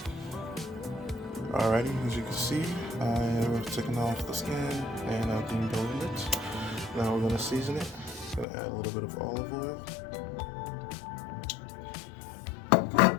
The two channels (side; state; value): right; drops out; at 8.5 s